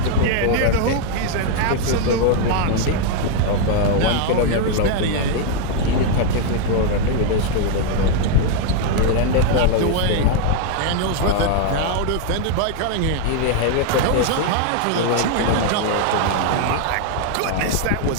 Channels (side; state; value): both; different; correlation 0.01